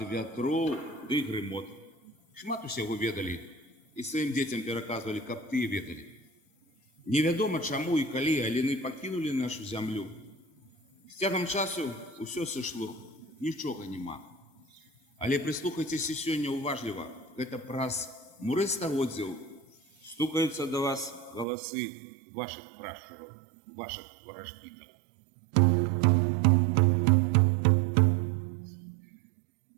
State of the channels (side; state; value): left; drops out; at 21.5 s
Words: вятроў ды грымот. Шмат усяго ведалі і сваім дзецям пераказвалі, каб тыя ведалі. Невядома чаму і калі аліны пакінулі нашу зямлю. З цягам часу ўсё сышло, нічога няма. Але прыслухайцеся сёння уважліва, гэта праз муры стагоддзяў стукаюцца да вас галасы вашых прашчураў, вашых варажбітаў.